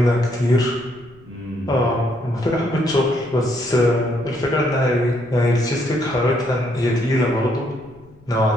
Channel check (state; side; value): noise; left; rumble, 26 dB below the sound